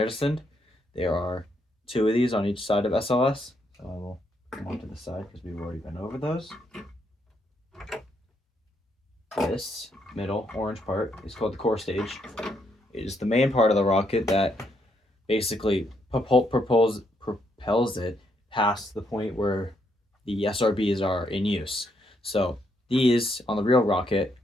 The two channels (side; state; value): both; normal; correlation 0.75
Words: There are two of these on each side of SLS. So I will come on to the side because we've already been over those. This middle orange part is called the core stage. It is the main part of the rocket that basically propels it past the point where the SRBs are in use. So these on the real rocket